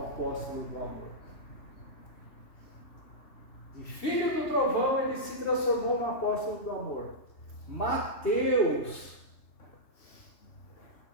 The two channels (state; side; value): late; right; 3.2 ms